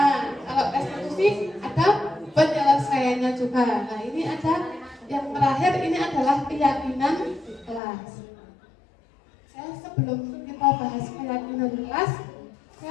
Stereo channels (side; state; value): right; drops out; at 7.8 s